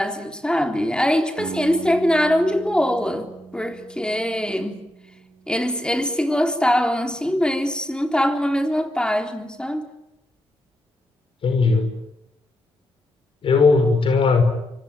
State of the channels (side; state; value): both; normal; correlation 0.84